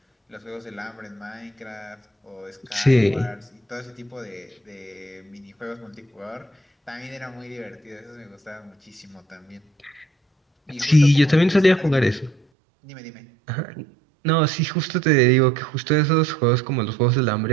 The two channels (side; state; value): left; drops out; at 12.4 s